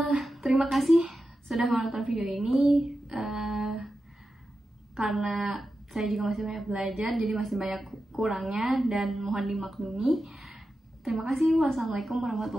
Terima kasih sudah menonton video ini. Karena saya juga masih banyak belajar, jadi masih banyak kurangnya dan mohon dimaklumi. Terima kasih. Wassalamualaikum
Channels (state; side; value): normal; both; correlation 0.91